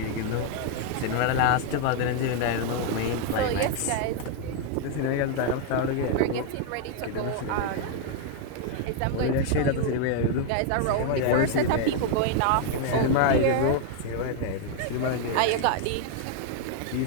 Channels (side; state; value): both; different; correlation 0.00